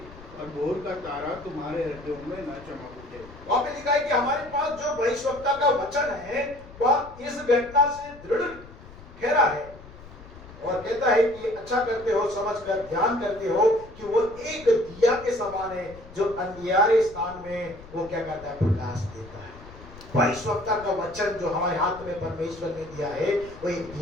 और भोर का तारा तुम्हारे हृदयों में न चमक उठे। वहां पे लिखा है कि हमारे पास जो भविष्यवक्ता का वचन है वह इस घटना से दृढ़ ठहरा है और कहता है कि अच्छा करते हो, समझकर ध्यान करते हो कि वो एक दिया के समान है जो अंधियारे स्थान में वो क्या करता है, प्रकाश देता है। भविष्यवक्ता का वचन जो हमारे हाथ में परमेश्वर ने दिया है वो एक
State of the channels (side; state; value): left; noise; rumble, 18 dB below the sound